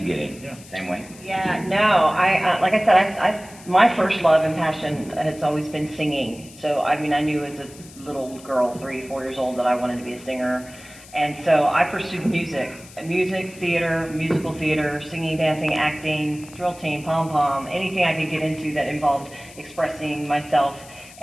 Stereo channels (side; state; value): left; noise; hiss, 20 dB below the sound